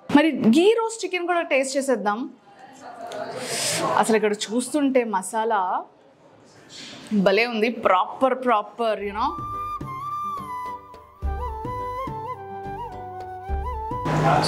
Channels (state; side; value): identical; both; correlation 1.00